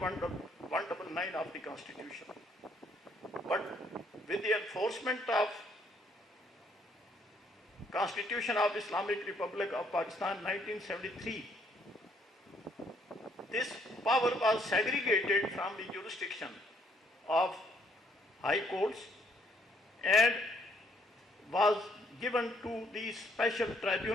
of the Constitution. But with the enforcement of Constitution of Islamic Republic of Pakistan 1973, this power was segregated from the jurisdiction of high courts and was given to the special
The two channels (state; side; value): normal; both; correlation 0.68